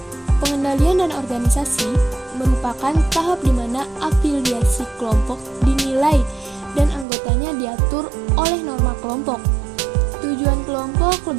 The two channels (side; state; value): left; drops out; at 7.1 s